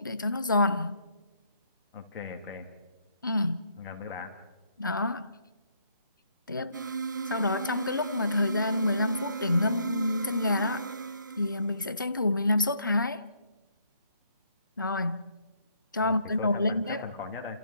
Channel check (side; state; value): both; inverted; correlation -0.70